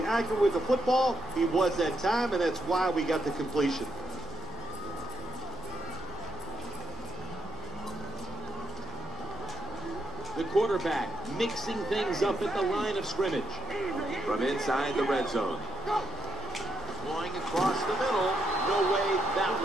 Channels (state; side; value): normal; both; correlation 0.77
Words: accurate with the football. He was that time, and that's why we got the completion. The quarterback mixing things up at the line of scrimmage. From inside the red zone. Going across the middle. No way that